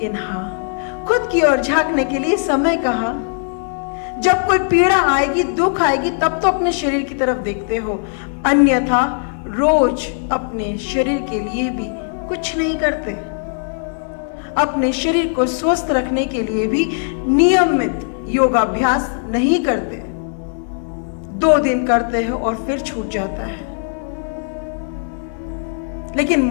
हाँ, खुद की ओर झांकने के लिए समय कहाँ? जब कोई पीड़ा आएगी, दुख आएगी, तब तो अपने शरीर की तरफ देखते हो, अन्यथा रोज अपने शरीर के लिए भी कुछ नहीं करते। अपने शरीर को स्वस्थ रखने के लिए भी नियमित योगाभ्यास नहीं करते। 2 दिन करते हो और फिर छूट जाता है। लेकिन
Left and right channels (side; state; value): right; silent; digital silence